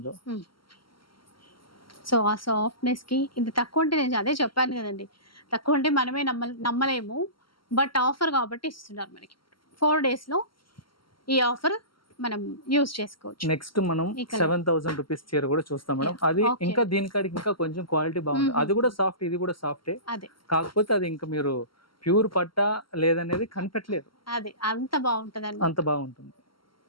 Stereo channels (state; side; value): late; right; 0.74 ms